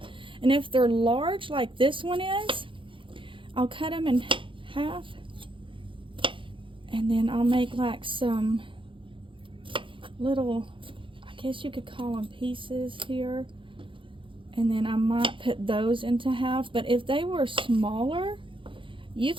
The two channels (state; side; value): late; left; 0.25 ms